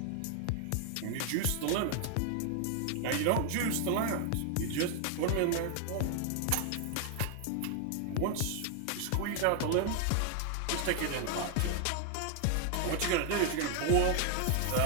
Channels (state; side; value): different; both; correlation 0.00